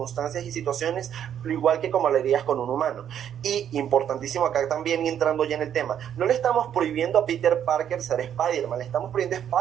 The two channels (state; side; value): quieter; left; 9.5 dB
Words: y situaciones, lo igual que como lo harías con un humano. Y importantísimo acá también, y entrando ya en el tema, no le estamos prohibiendo a Peter Parker ser Spider-Man, le estamos prohibiendo a